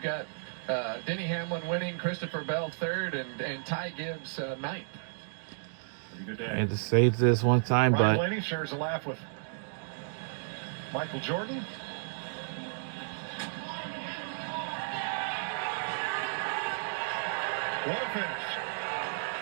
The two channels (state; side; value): silent; left; digital silence